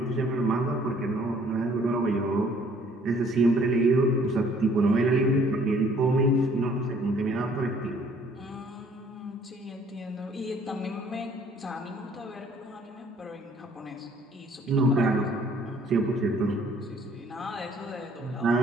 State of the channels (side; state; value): both; normal; correlation 0.59